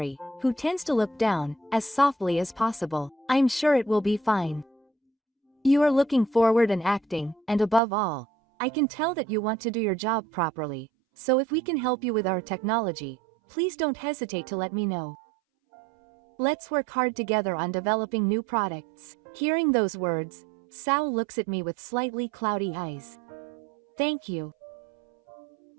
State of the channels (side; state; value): left; drops out; at 7.8 s